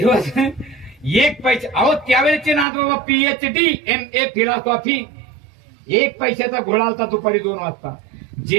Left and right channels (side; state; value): left; drops out; at 2.7 s